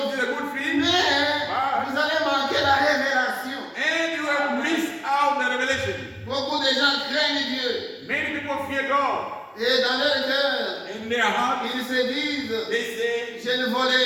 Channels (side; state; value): both; identical; correlation 1.00